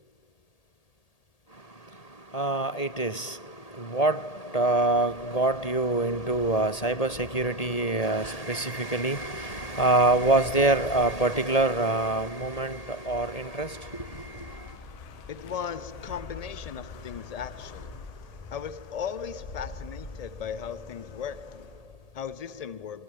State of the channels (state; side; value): late; right; 1.8 ms